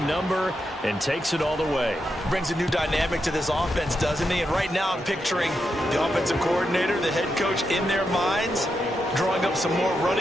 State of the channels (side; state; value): both; normal; correlation 0.85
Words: number and takes it all the way. Brings a new dynamic to this offense, doesn't he? And right now I'm picturing the offensive coordinator, the head coach in their minds, drawing up some more